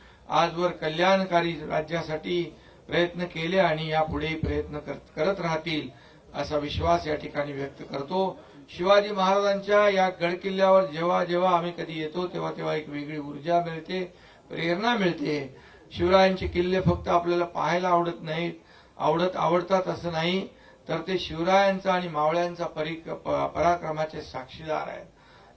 आजवर कल्याणकारी राज्यासाठी प्रयत्न केले आणि यापुढेही प्रयत्न करत राहतील असा विश्वास या ठिकाणी व्यक्त करतो. शिवाजी महाराजांच्या या गडकिल्ल्यावर जेव्हा जेव्हा आम्ही कधी येतो तेव्हा तेव्हा एक वेगळी ऊर्जा मिळते, प्रेरणा मिळते. शिवरायांचे किल्ले फक्त आपल्याला पाहायला आवडत नाहीत, आवडतात असं नाही, तर ते शिवरायांचा आणि मावळ्यांचा पराक्रमाचे साक्षीदार आहेत.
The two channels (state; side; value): identical; both; correlation 1.00